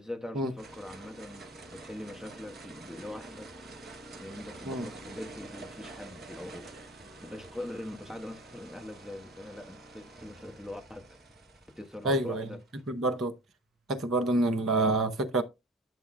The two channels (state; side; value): normal; both; correlation 0.37